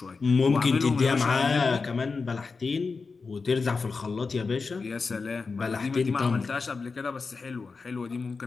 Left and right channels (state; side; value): quieter; right; 4.5 dB